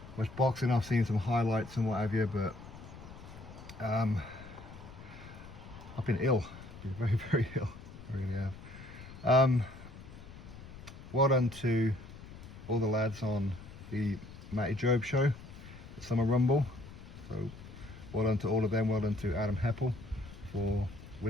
boxing. I've seen some highlights and what have you, but I've been ill. I've been very ill. I really have. Well done to all the lads on the Matty Job show, the Summer Rumble. So well done to all of them. Well done to Adam Heppel for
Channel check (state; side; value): noise; left; rumble, 16 dB below the sound